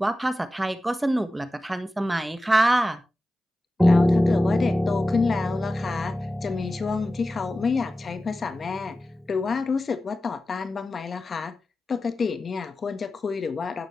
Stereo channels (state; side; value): normal; both; correlation 0.94